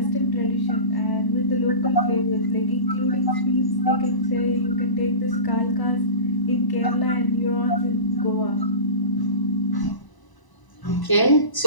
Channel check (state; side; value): late; right; 1.0 ms